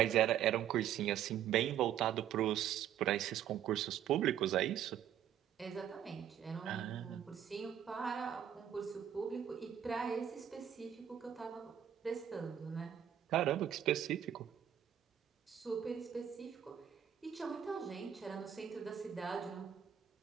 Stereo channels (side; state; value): left; quieter; 9.8 dB